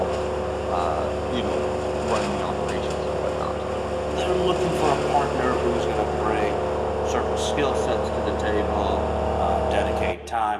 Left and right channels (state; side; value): identical; both; correlation 1.00